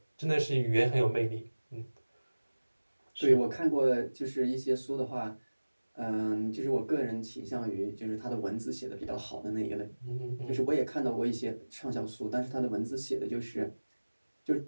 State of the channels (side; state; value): both; inverted; correlation -1.00